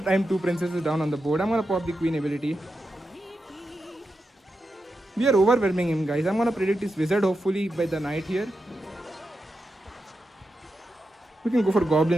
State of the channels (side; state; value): both; normal; correlation 0.88